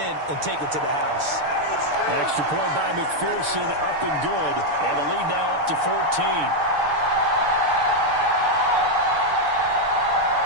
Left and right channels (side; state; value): left; late; 6.7 ms